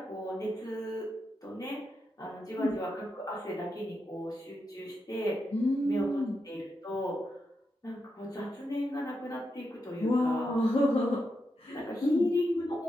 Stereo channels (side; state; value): both; normal; correlation 0.86